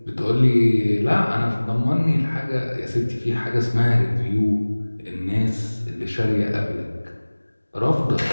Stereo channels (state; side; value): inverted; both; correlation -1.00